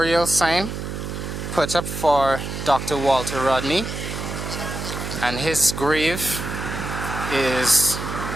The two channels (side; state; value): right; noise; hum, 6 dB below the sound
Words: sign put up for Dr. Walter Rodney, and his grave is